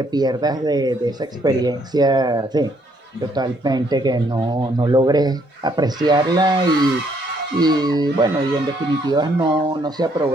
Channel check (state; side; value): normal; both; correlation 0.69